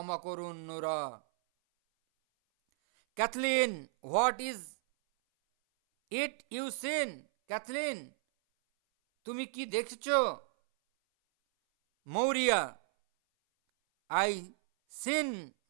করুন Nora. Cathleen, what is it you seen? Cathleen, তুমি কি দেখছ? Maurya, I seen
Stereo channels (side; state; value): left; silent; 55 dB below the other